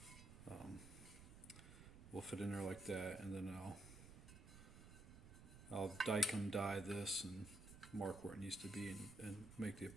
will fit in there like that, and then I'll die this and mark where it needs to be and make the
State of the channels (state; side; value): noise; right; rumble, 14 dB below the sound